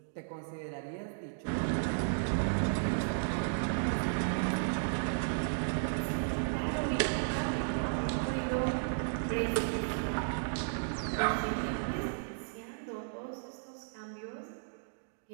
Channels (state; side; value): silent; left; digital silence